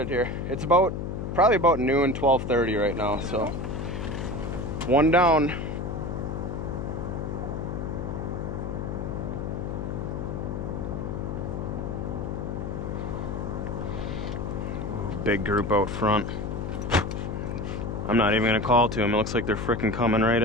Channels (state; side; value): noise; left; hum, 4 dB below the sound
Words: here. It's probably about noon, 12:30 right now. So one down. Ooh, big group out front. I'm not even gonna call to them. It looks like they're freaking coming right